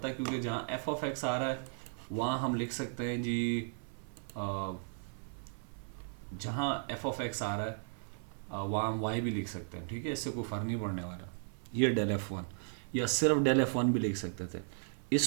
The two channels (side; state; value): left; silent; 54 dB below the other